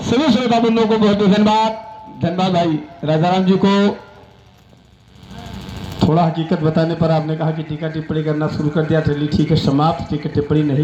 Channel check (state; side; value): identical; both; correlation 1.00